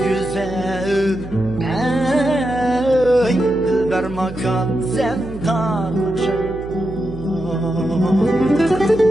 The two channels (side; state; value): right; noise; hum, 13 dB below the sound